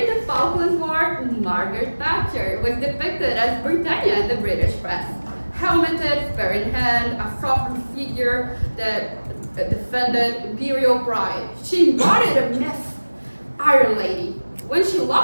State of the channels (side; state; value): both; inverted; correlation -1.00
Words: the Falklands War, Margaret Thatcher was depicted as Britannia in the British press. Helmeted, spear in hand, a sovereign figure that defended imperial pride. She embodied a myth, Iron Lady. When she